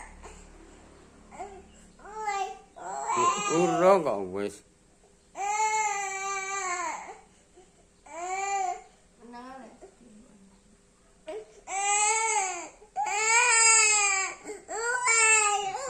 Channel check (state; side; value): identical; both; correlation 1.00